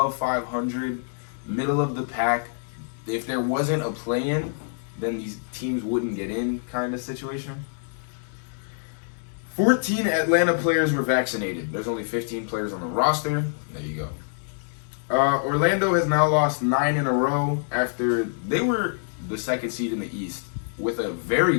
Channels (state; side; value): silent; right; digital silence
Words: 500, middle of the pack. If there wasn't a play-in, then these teams wouldn't get in kind of situation. 14 Atlanta players were vaccinated. There's only 15 players on the roster. There you go. Orlando has now lost 9 in a row after they were the second seed in the East with a very